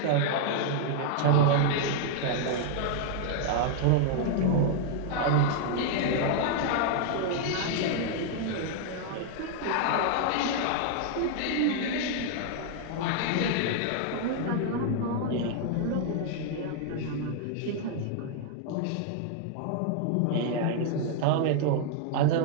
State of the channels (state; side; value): different; both; correlation 0.00